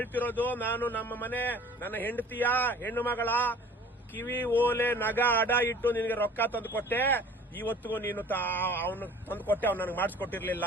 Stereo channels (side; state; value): both; normal; correlation 0.47